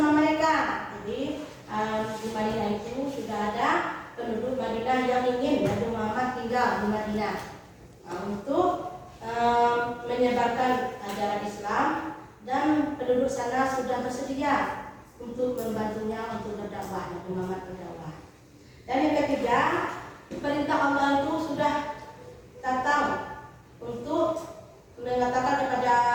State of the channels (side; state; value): both; identical; correlation 1.00